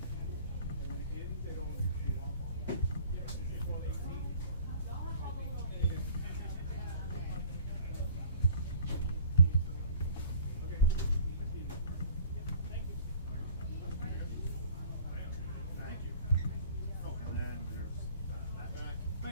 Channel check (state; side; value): inverted; both; correlation -0.48